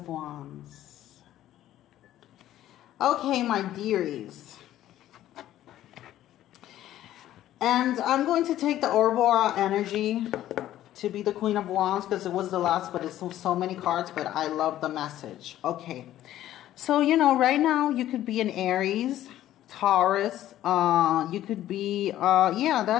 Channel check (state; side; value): quieter; right; 13.1 dB